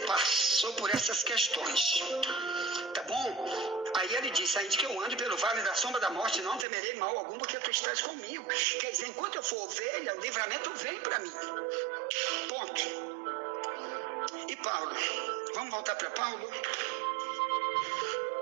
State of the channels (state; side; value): drops out; left; at 6.7 s